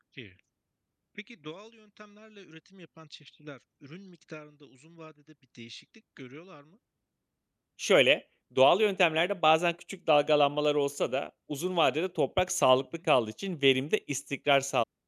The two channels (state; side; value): identical; both; correlation 1.00